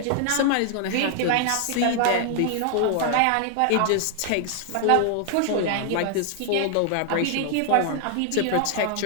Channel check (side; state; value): both; different; correlation 0.00